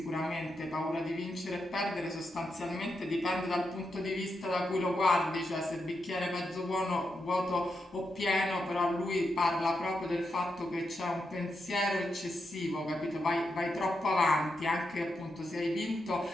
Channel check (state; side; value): normal; both; correlation 0.85